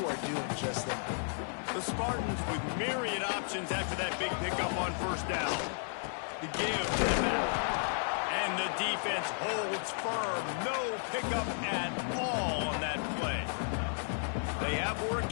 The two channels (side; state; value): right; silent; 55 dB below the other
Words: are doing just that. The Spartans with myriad options after that big pickup on first down. The give to the back. And the defense holds firm. No pickup at all on that play. They have work